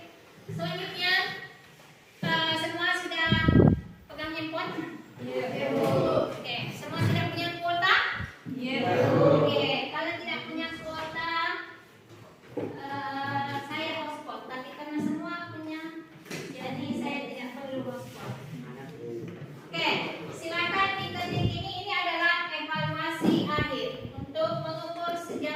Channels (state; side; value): identical; both; correlation 1.00